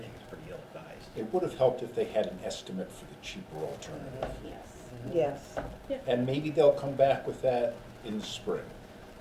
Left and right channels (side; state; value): both; identical; correlation 1.00